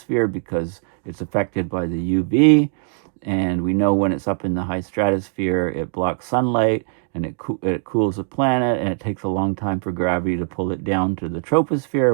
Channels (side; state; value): left; silent; 65 dB below the other